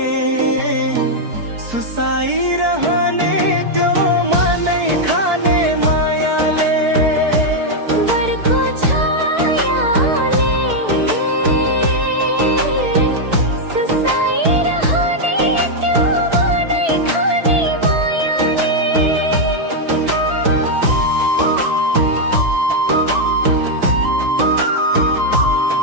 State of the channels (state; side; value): late; left; 4.6 ms